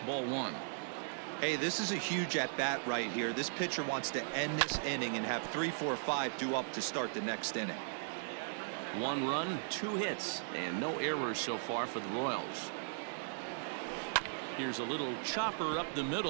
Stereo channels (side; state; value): left; silent; digital silence